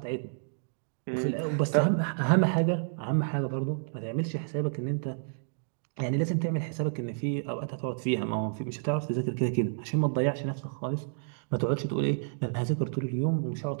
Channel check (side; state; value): left; silent; digital silence